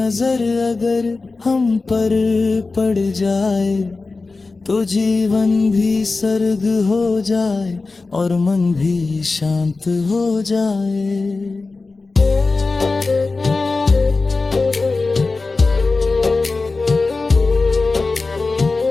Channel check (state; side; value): quieter; right; 3.8 dB